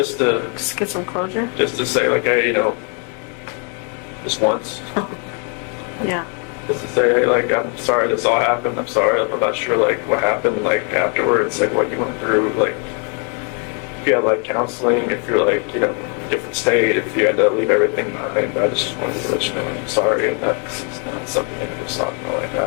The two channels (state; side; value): quieter; right; 38.5 dB